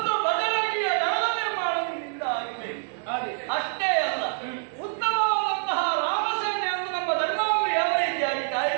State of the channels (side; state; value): left; silent; 61 dB below the other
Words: ಬಜರಂಗಿಯ ದಳದ ನಿರ್ಮಾಣ ನಿನ್ನಿಂದ ಆಗಬೇಕು. ಅಷ್ಟೇ ಅಲ್ಲ, ಉತ್ತಮವಾದಂತಹ ರಾಮಸೇನೆಯನ್ನು ನಮ್ಮ ಧರ್ಮವನ್ನು ಯಾವ ರೀತಿಯಾಗಿ